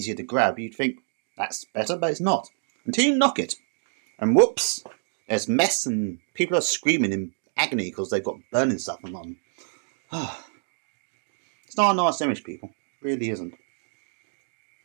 to grab, you'd think that's better, but it's not. Until you knock it. And whoops, there's mess and people are screaming in agony because they've got burning stuff on them. It's not a nice image, people. It really isn't.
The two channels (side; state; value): left; silent; digital silence